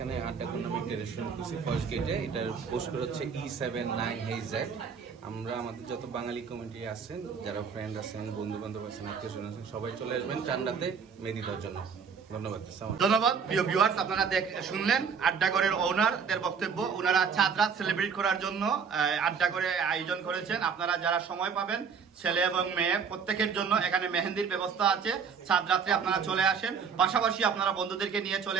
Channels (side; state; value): left; quieter; 6.3 dB